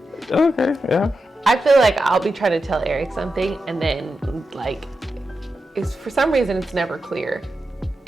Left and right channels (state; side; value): normal; both; correlation 0.89